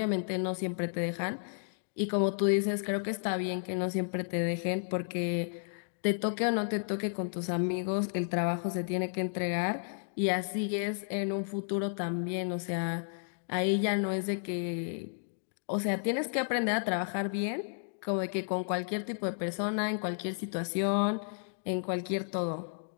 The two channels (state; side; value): silent; right; digital silence